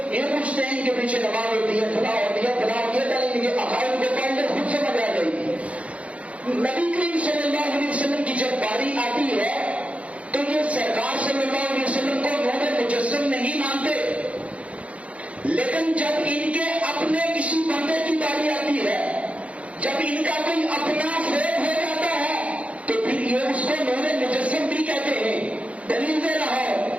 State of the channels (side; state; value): left; late; 0.064 ms